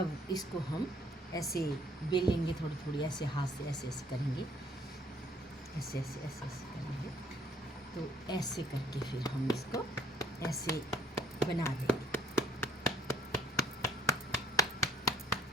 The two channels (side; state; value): both; normal; correlation 0.61